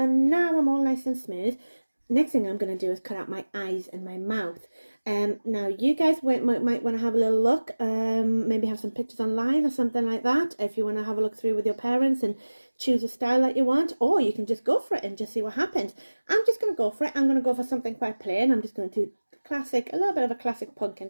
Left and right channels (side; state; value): both; inverted; correlation -1.00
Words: now I'm all nice and smooth. Next thing I'm going to do is cut out my eyes and my mouth. Now you guys might want to have a little look, maybe have some pictures online or something like that, if you want to have a look through with your parents and choose a style that you want, or you can just go for it and just see what happens. I'm just going to go for it. I'm going to go for something quite plain. I'm just going to do classic, a little bit of a classic